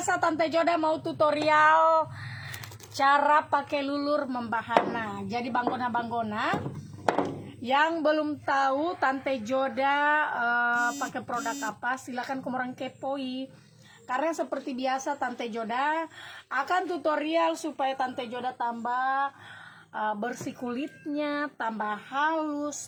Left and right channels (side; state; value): both; identical; correlation 1.00